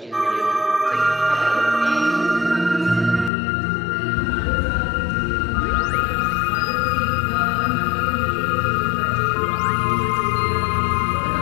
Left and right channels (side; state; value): right; drops out; at 3.3 s